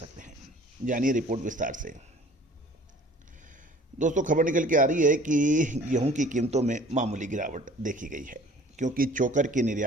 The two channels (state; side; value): normal; both; correlation 0.49